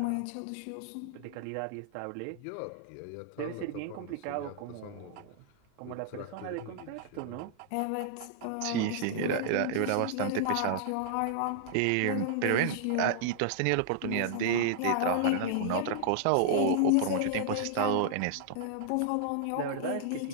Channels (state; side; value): different; both; correlation -0.01